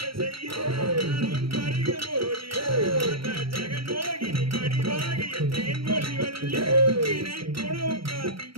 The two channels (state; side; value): late; left; 0.75 ms